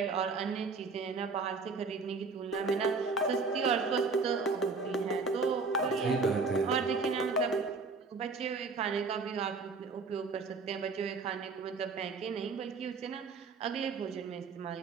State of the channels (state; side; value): quieter; left; 4.4 dB